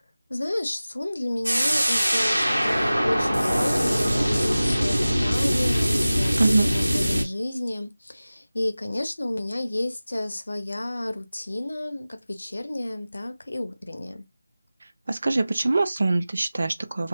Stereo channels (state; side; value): inverted; both; correlation -0.97